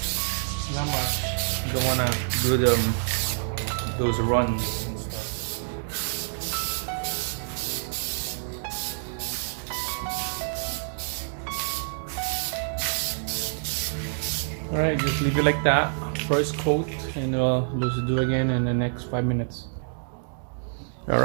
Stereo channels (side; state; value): left; silent; digital silence